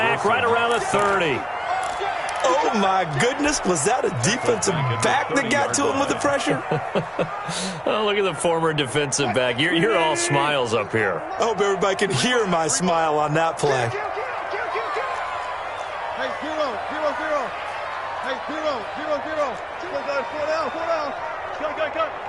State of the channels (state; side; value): identical; both; correlation 1.00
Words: right around the 30. Oh, my goodness. Was that a defensive back that got to him with the pressure? Oh, look at the former defensive back. You're all smiles up here. I hope everybody can hear my smile on that play. Hey, 0-0-0. Hey, 0-0-0. Four down. Cut.